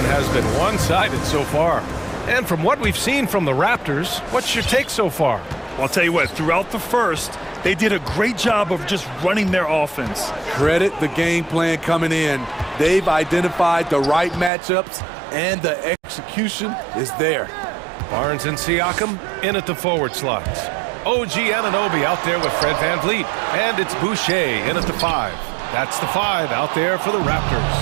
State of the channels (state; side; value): drops out; left; at 14.5 s